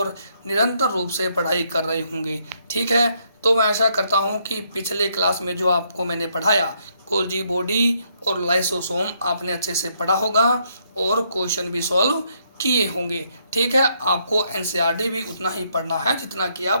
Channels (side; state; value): both; inverted; correlation -0.73